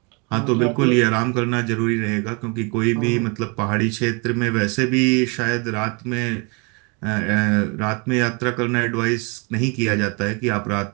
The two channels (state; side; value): quieter; left; 31.7 dB